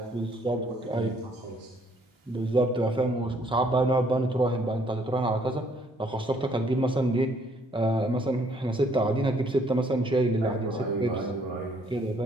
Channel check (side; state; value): both; normal; correlation 0.65